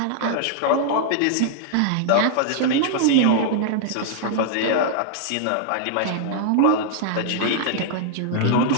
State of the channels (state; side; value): different; both; correlation -0.01